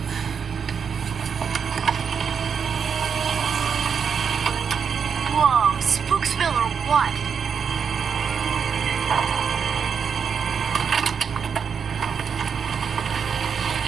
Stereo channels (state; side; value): quieter; left; 6.7 dB